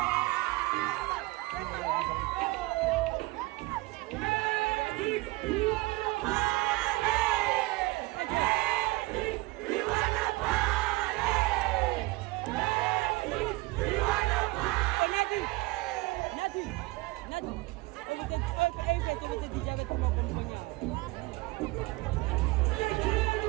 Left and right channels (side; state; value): left; quieter; 21.8 dB